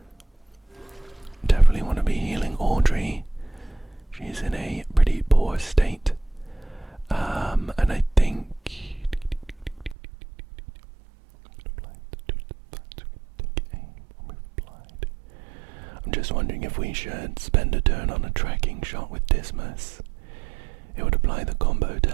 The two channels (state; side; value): drops out; left; at 10.0 s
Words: Definitely want to be healing Audrey. She's in a pretty poor state. And I think... I'm just wondering if we should spend a turn on a tracking shot with Dismas. It would apply the combo